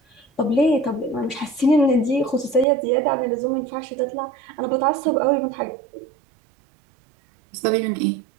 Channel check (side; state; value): left; drops out; at 2.7 s